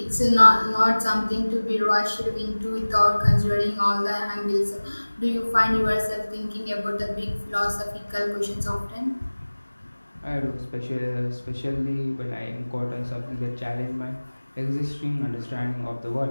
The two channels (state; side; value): inverted; both; correlation -1.00